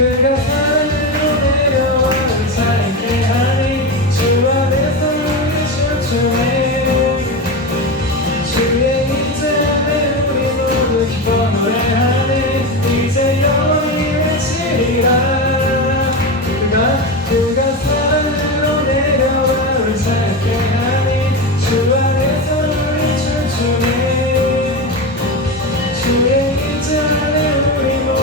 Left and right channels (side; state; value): both; normal; correlation 0.19